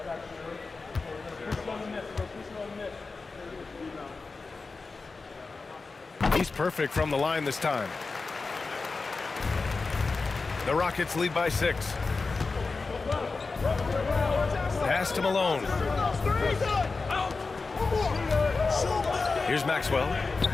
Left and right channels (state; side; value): quieter; right; 4.1 dB